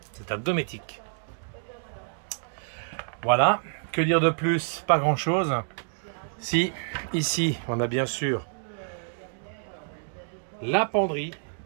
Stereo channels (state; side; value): silent; left; digital silence